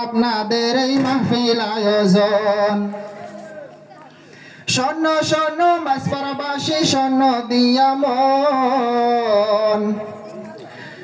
আপনাদের এই মাহফিল আয়োজন শোন শোন মাঝপাড়াবাসী শোন দিয়া মন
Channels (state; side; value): identical; both; correlation 1.00